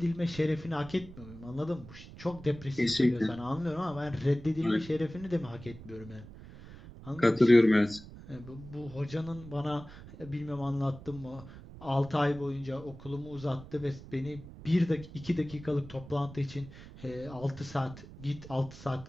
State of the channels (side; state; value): right; noise; rumble, 16 dB below the sound